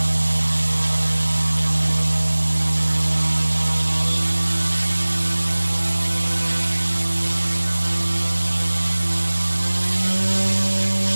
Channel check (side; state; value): both; inverted; correlation -1.00